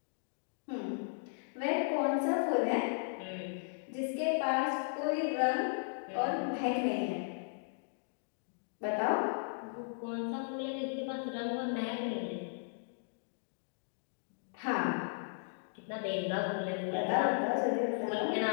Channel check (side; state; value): right; silent; digital silence